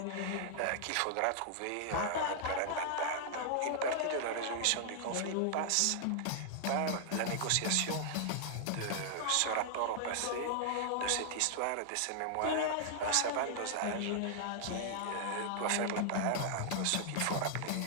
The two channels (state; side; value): different; both; correlation -0.01